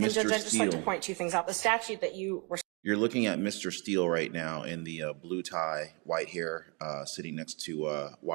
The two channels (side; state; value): left; quieter; 32.3 dB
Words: I'd just like to Steele. point two things out. The statute that you were You're looking at Mr. Steele right now in the blue tie, white hair, sitting next to